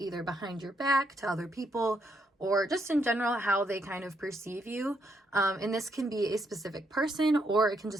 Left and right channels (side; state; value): both; normal; correlation 0.76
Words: behind your back to other people or just in general how they kind of perceive you. And this can be a specific person, or it can